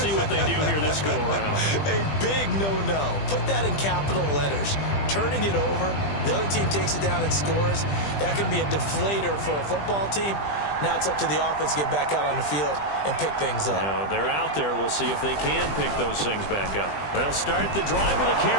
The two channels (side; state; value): right; late; 20 ms